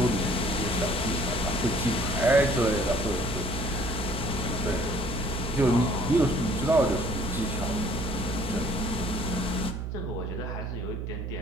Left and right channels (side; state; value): right; noise; hum, 4 dB below the sound